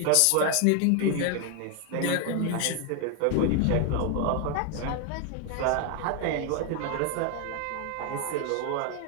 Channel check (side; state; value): both; different; correlation 0.00